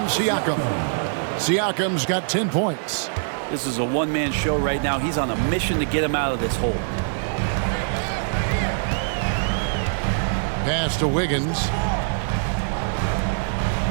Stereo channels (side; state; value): left; silent; digital silence